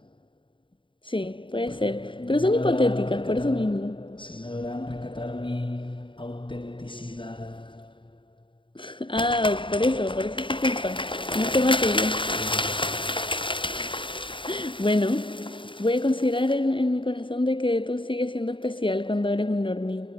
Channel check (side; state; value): right; late; 0.24 ms